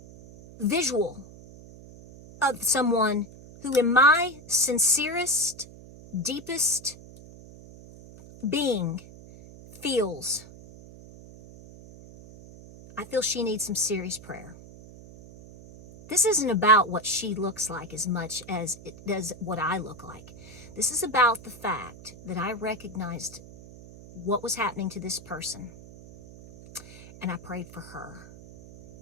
visual of someone who, in my sincerest, deepest being, I feel she needs some serious prayer. This isn't about what she looks like as much as it does what I look like. This is about the fact that I recognized what was happening to this person, and I prayed for her.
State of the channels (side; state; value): right; noise; hum, 18 dB below the sound